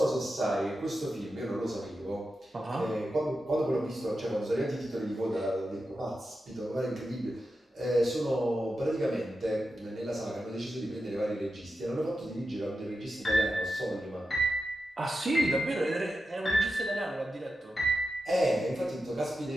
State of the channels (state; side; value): normal; both; correlation 0.90